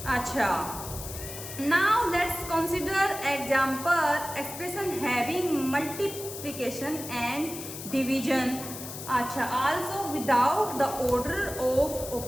अच्छा, now let's consider example expression having multiplication and division. अच्छा, also without the order of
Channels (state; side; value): noise; left; hiss, 10 dB below the sound